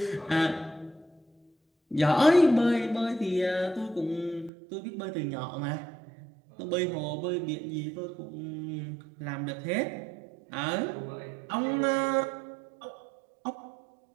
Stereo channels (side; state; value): left; drops out; at 4.5 s